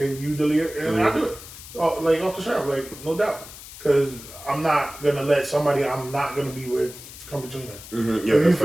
you delete it? And I do it. Like, off the shop, like, no doubt. Because I'm not going to let somebody I'm not going to be with come between them. Yeah, if you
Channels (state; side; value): noise; left; hiss, 15 dB below the sound